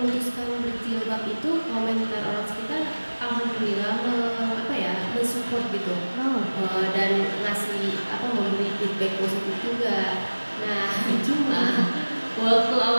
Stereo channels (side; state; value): both; inverted; correlation -1.00